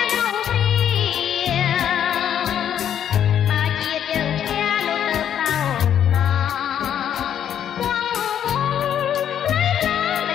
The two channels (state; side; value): quieter; right; 9.6 dB